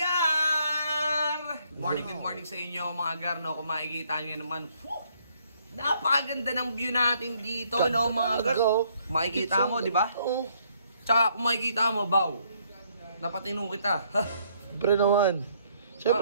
Good morning sa inyo, mga gar, no? Kung makikita nyo naman, napakaganda ng view natin dito, no, mga gar? Makikita mo, di ba? Oo. Tsaka kung makikita mo, Baw, napatino kita. Siyempre naman.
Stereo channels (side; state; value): both; inverted; correlation -0.68